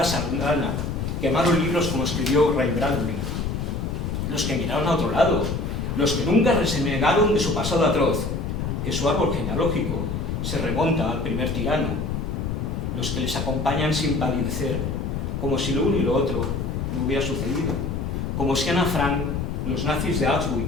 sardana, quemaron libros como escribió Ray Bradbury. Los que miraron a otro lado, los que nunca renegaron de su pasado atroz, que su árbol genealógico se remonta al primer tirano, los que les acompañan sin palidecer, como si lo uno y lo otro no hubiera sucedido, como si Ana Frank, los nazis de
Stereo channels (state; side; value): noise; left; rumble, 2 dB below the sound